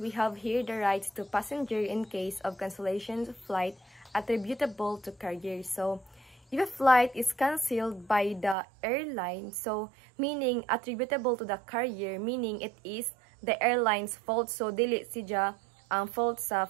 have here the rights to passenger in case of cancellation of flight attributable to carrier. So, if a flight is cancelled by the airline, so meaning attributable to the carrier, meaning it is the airline's fault. So, dili siya ang fault sa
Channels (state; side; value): drops out; left; at 8.6 s